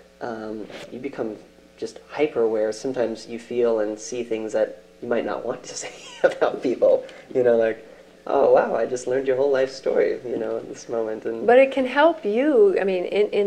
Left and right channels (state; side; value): identical; both; correlation 1.00